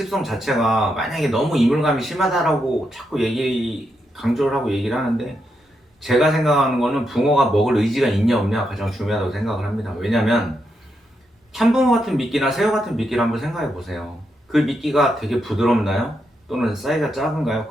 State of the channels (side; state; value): both; normal; correlation 0.83